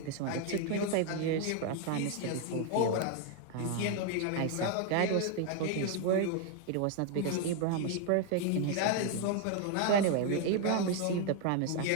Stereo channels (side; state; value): both; different; correlation 0.01